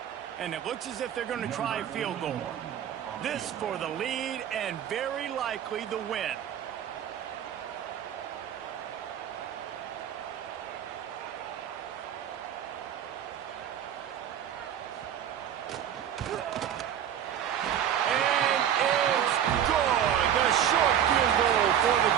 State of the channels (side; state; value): left; quieter; 9.8 dB